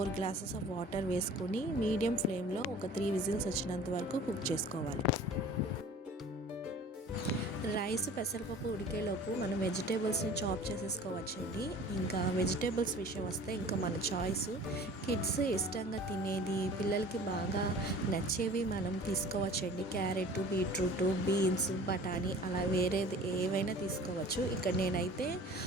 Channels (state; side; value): normal; both; correlation 0.45